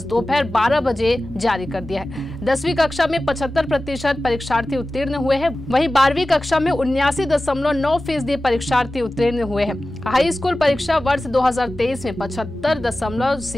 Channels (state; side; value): normal; both; correlation 0.95